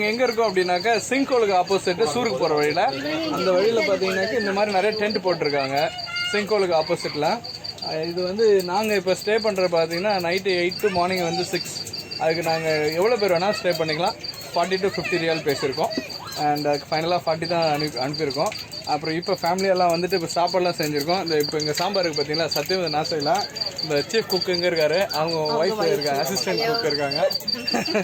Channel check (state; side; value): identical; both; correlation 1.00